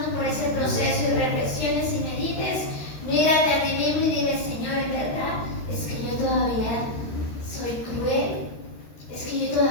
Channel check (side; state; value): right; late; 13 ms